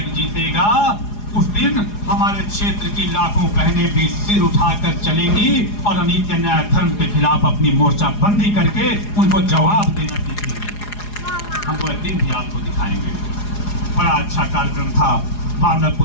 जीतेगा उस दिन हमारे क्षेत्र की लाखों बहनें भी सिर उठाकर चलेंगी और अनीति अन्याय धर्म के खिलाफ अपनी मोर्चाबंदी करके उनको जवाब देना सीखेंगे। हम वो दिन भी आपको दिखाएंगे। बड़ा अच्छा कार्यक्रम था।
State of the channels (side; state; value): right; late; 4.8 ms